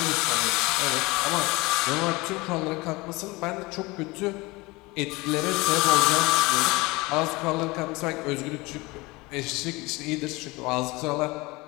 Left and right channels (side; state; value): right; quieter; 23.2 dB